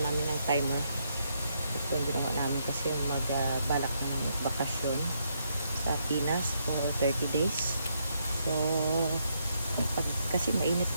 namin ng timer. Ito yung ginawa namin kasi balak na namin magbakasyon sa Pinas for 30 days. So kasi mainit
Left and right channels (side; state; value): both; inverted; correlation -0.76